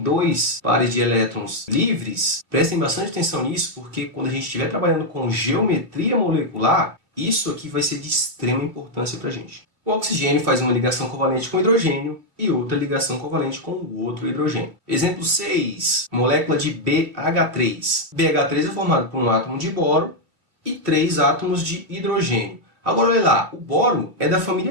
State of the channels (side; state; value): left; late; 2.9 ms